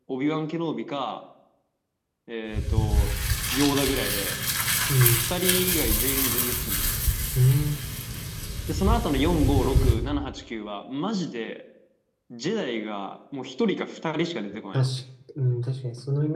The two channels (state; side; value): identical; both; correlation 1.00